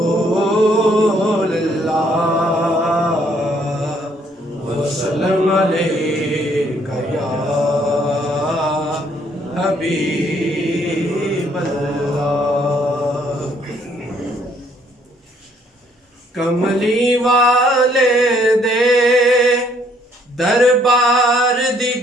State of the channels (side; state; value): both; normal; correlation 0.66